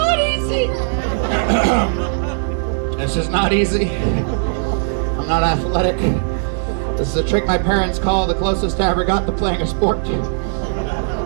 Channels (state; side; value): silent; left; digital silence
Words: easy. This is not easy. I'm not athletic. This is a trick my parents call the closest I ever got to playing a sport.